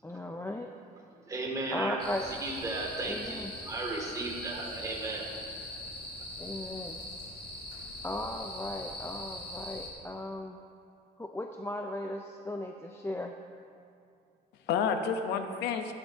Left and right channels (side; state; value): both; normal; correlation 0.37